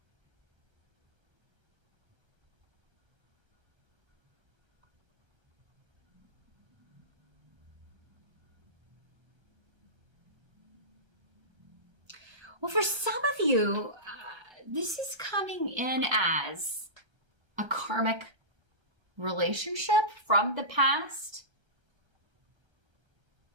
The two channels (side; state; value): left; late; 1.3 ms